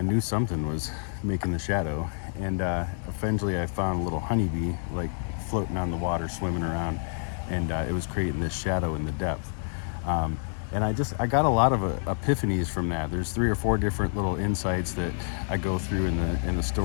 something was making the shadow, and eventually I found a little honeybee like floating on the water, swimming around, and it was creating this shadow in the depth. And I got a lot of epiphanies from that. There's 3 or 4 different little insights that I go through in the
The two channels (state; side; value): silent; right; 59 dB below the other